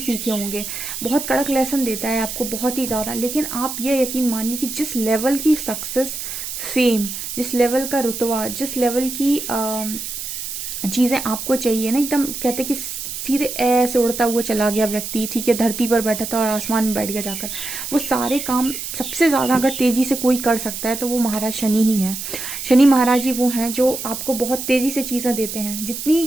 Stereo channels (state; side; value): noise; right; hiss, 6 dB below the sound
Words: होंगे। बहुत कड़क लेसन देता है आपको, बहुत ही ज़्यादा। लेकिन आप ये यकीन मानिए कि जिस लेवल की सक्सेस, फेम, जिस लेवल का रुतबा, जिस लेवल की चीज़ें आपको चाहिए ना, एकदम कहते कि सीधे ऐसे उड़ता हुआ चला गया व्यक्ति, ठीक है, धरती पर बैठा था और आसमान में बैठ गया जाकर, वो सारे काम सबसे ज़्यादा अगर तेज़ी से कोई कर सकता है तो वो महाराज शनि ही है। शनि महाराज ही वो हैं जो आपको बहुत तेज़ी से चीज़ें देते हैं।